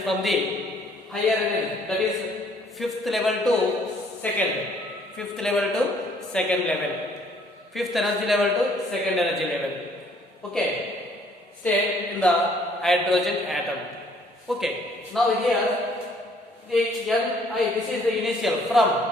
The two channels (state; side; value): normal; both; correlation 0.62